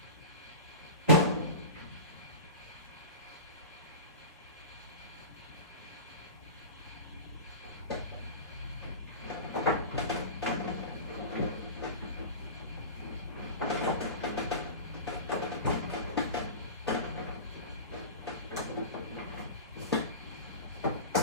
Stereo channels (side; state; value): both; inverted; correlation -0.31